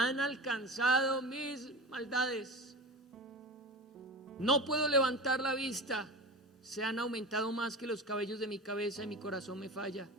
alcanzado mis maldades. No puedo levantar la vista, se han aumentado más que los cabellos de mi cabeza y mi corazón me falla.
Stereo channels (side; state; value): both; normal; correlation 0.31